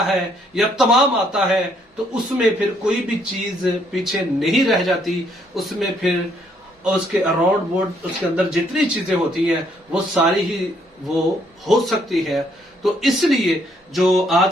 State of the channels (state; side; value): normal; both; correlation 0.69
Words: है या तमाम आता है, तो उसमें फिर कोई भी चीज पीछे नहीं रह जाती। उसमें फिर उसके अराउंड बोर्ड, उसके अंदर जितनी चीजें होती हैं वो सारी ही वो हो सकती है। तो इसलिए जो